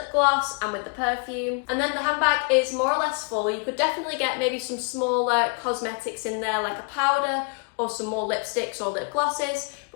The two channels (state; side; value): quieter; right; 36.6 dB